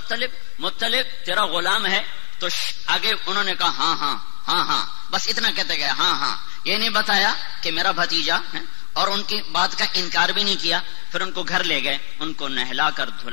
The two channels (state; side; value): silent; right; digital silence